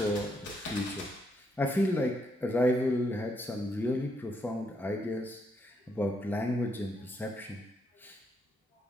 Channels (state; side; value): normal; both; correlation 0.77